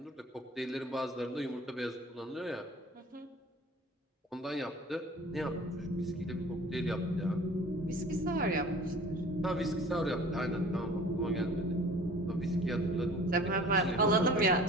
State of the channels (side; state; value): both; normal; correlation 0.45